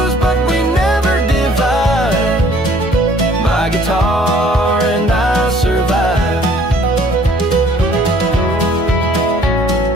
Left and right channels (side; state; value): both; normal; correlation 0.57